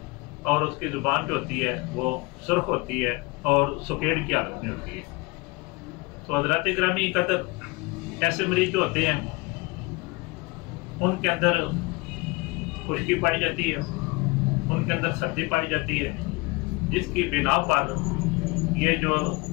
और उसकी ज़ुबान जो होती है वो सुर्ख होती है और सुकेड़ की हालत में होती है। तो हज़रात ग्रामी कदर, ऐसे मरीज जो होते हैं उनके अंदर खुश्की पाई जाती है, उनके अंदर सर्दी पाई जाती है, जिसकी बिना पर ये जो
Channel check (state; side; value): quieter; right; 24.5 dB